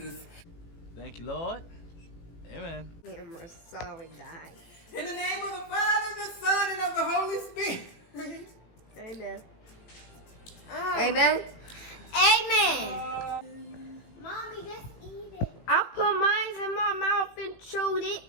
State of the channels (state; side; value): late; right; 18 ms